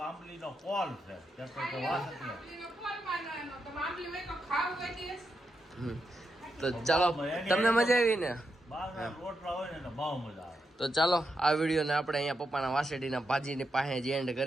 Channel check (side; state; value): both; normal; correlation 0.85